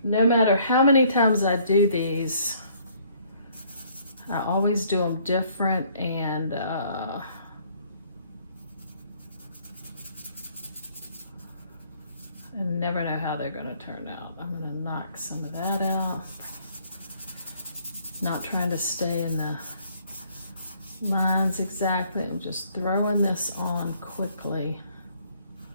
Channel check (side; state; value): both; inverted; correlation -0.63